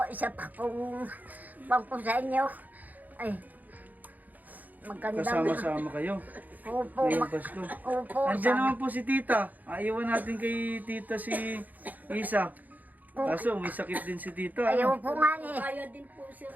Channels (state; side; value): late; left; 0.081 ms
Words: isa pa pong bangko sa inyo. Ay, maganda. Kasama-sama kayo. Opo, Ngayong Pasko. opo. Andiyan naman po si tita. Aiwan natin kay tita si Isa. Kaso may sakit din si tita. Ayaw Ano? po nga eh. Kaya din po sir,